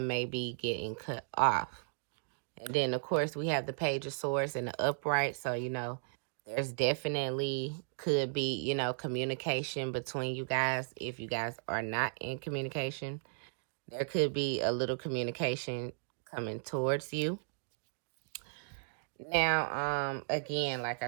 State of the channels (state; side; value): silent; left; digital silence